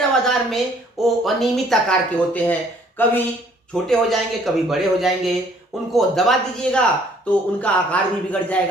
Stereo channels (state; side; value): normal; both; correlation 0.60